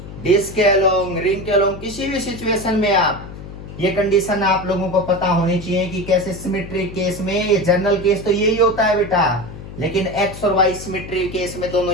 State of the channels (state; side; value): noise; left; hum, 13 dB below the sound